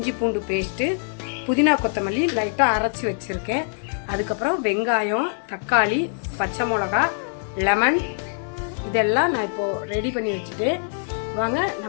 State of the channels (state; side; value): silent; right; digital silence